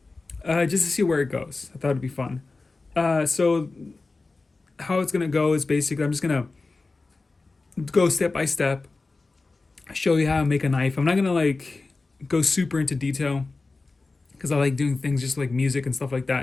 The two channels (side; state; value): right; quieter; 3.6 dB